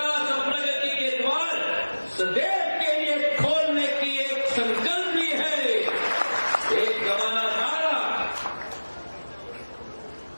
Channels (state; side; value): inverted; both; correlation -1.00